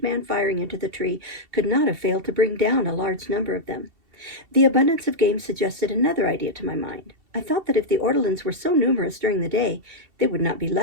man firing into the tree could not have failed to bring down a large number of them. The abundance of game suggested another idea to my mind. I thought that if the ortolans were so numerous during the day, they would not be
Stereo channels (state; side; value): late; left; 2.7 ms